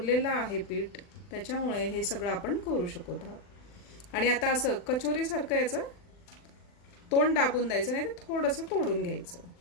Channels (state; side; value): late; right; 40 ms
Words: आहे पीठ, त्याच्यामुळे हे सगळं आपण करू शकत आहोत. आणि आता असं कचोरी सारखं याचं तोंड दाबून द्यायचं, नाही तर थोडंसं तोडून घ्यायचं